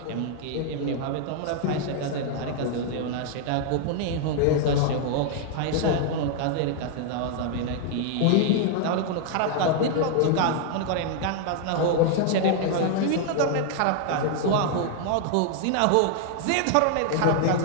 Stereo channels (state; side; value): different; both; correlation 0.00